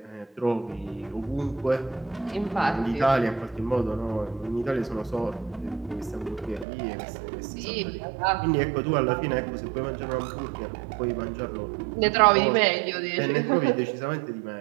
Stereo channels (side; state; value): left; drops out; at 6.7 s